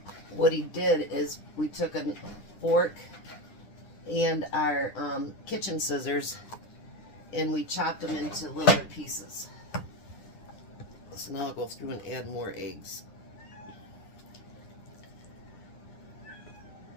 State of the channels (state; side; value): late; right; 9.9 ms